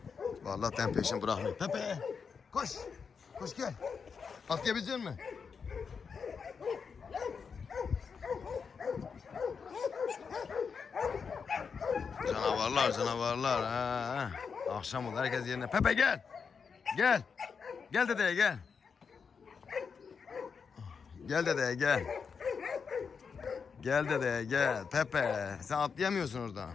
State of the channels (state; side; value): quieter; right; 5.9 dB